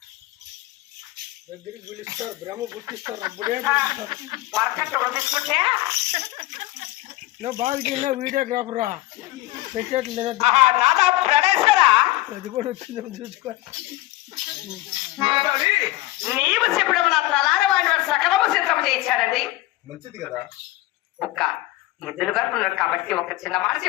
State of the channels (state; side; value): quieter; right; 18.0 dB